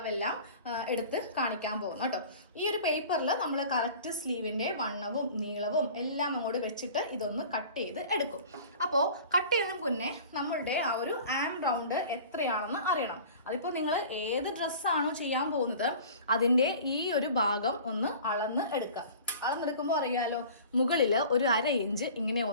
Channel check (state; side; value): inverted; both; correlation -0.43